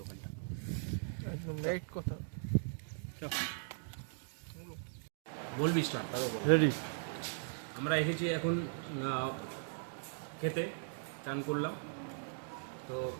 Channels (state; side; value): silent; left; digital silence